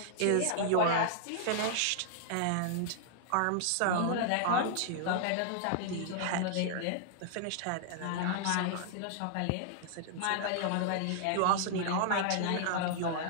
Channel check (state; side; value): different; both; correlation -0.01